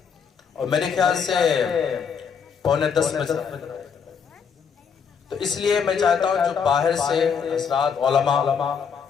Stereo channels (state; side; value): quieter; right; 6.5 dB